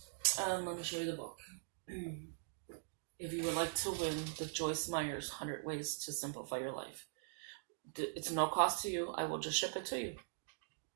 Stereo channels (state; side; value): silent; left; digital silence